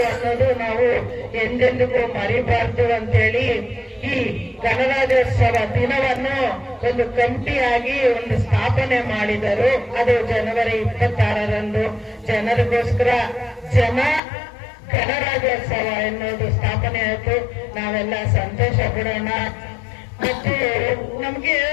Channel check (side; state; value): right; drops out; at 14.2 s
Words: ಅನ್ನೋದು ನಾವು ಎಂದೆಂದಿಗೂ ಮರಿಬಾರ್ದು ಅಂತೇಳಿ ಈ ಗಣರಾಜ್ಯೋತ್ಸವ ದಿನವನ್ನು ಒಂದು ಕಮಿಟಿಯಾಗಿ ಒಂದು ಸ್ಥಾಪನೆ ಮಾಡಿದರು. ಅದು ಜನವರಿ 26ರಂದು ಜನರಿಗೋಸ್ಕರ ಗಣರಾಜ್ಯೋತ್ಸವ ಎನ್ನುವುದು ಸ್ಥಾಪನೆ ಆಯಿತು. ನಾವೆಲ್ಲ ಸಂತೋಷ ಪಡೋಣ ಮತ್ತು ನಮ್ಗೆ